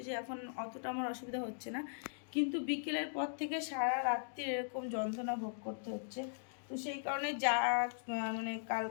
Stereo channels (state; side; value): silent; right; digital silence